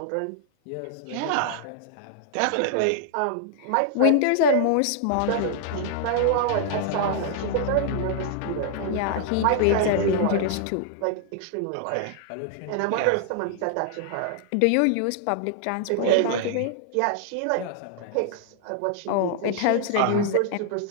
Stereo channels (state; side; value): different; both; correlation -0.01